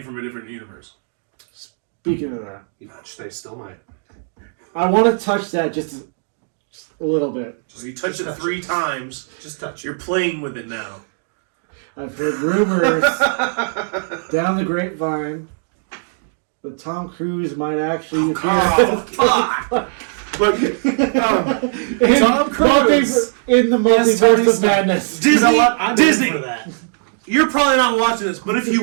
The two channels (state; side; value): silent; left; digital silence